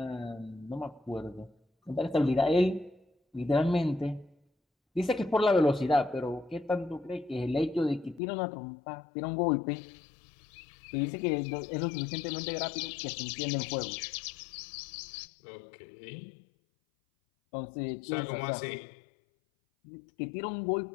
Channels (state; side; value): drops out; right; at 8.2 s